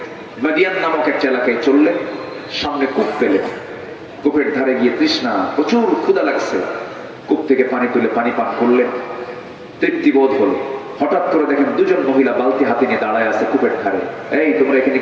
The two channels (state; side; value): identical; both; correlation 1.00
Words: মাদিয়ান নামক একটা এলাকায় চললেন। সামনে কূপ পেলেন, কূপের ধারে গিয়ে তৃষ্ণা, প্রচুর ক্ষুধা লাগছে। কূপ থেকে পানি তুলে পানি পান করলেন, তৃপ্তি বোধ হলো। হঠাৎ করে দেখেন দুজন মহিলা বালতি হাতে নিয়ে দাঁড়ায় আছে কূপের ধারে। এই তোমরা এখানে